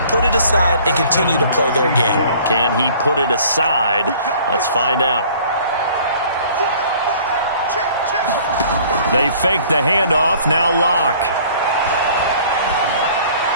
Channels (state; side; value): inverted; both; correlation -0.52